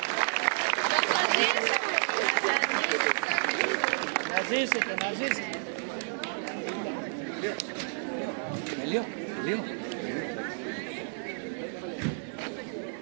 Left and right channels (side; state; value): left; silent; digital silence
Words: Να ζήσετε, να ζήσετε. Λίγο.